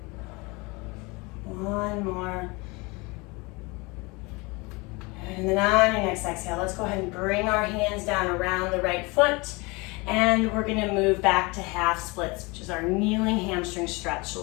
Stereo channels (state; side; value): quieter; right; 26.1 dB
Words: one more. And then on your next exhale, let's go ahead and bring our hands down around the right foot. And we're gonna move back to half splits, which is our kneeling hamstring stretch. So